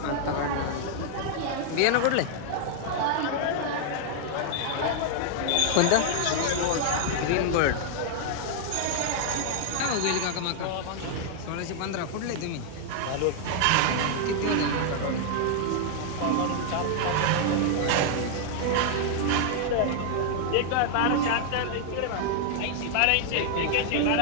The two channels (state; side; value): different; both; correlation 0.00